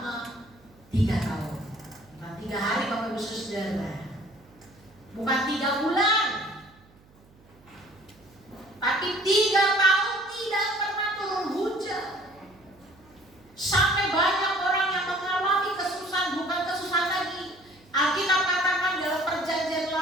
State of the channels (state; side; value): noise; right; hum, 28 dB below the sound